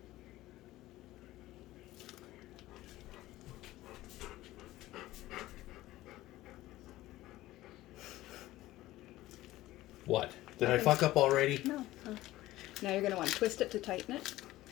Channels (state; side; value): quieter; right; 16.5 dB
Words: What? Did I fuck up already? No. Now you're going to want to twist it to tighten it.